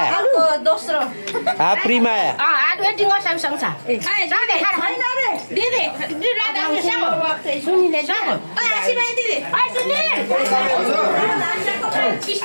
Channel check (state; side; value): inverted; both; correlation -1.00